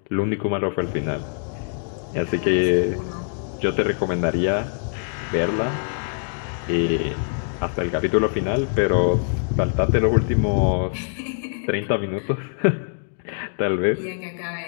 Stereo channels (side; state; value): right; silent; 63 dB below the other